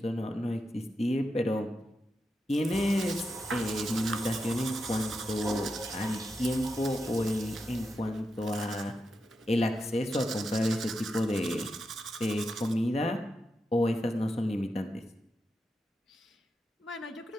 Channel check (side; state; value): both; normal; correlation 0.87